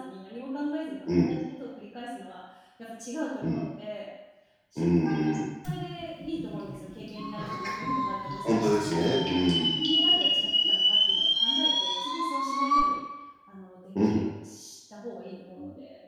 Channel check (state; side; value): identical; both; correlation 1.00